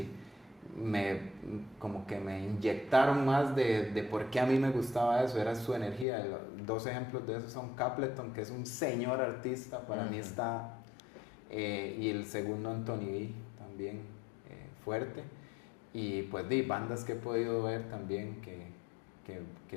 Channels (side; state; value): right; drops out; at 6.1 s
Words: como que me inyectaron más de por qué a mí me gustaba eso, era su energía. Dos ejemplos de eso son Capleton, que es un señor artista, para mí está, y el segundo Anthony B, también fuerte. Y pues bandas que he podido ver también que